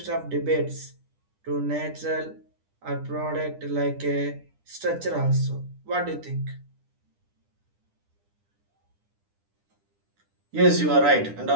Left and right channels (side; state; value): left; late; 10 ms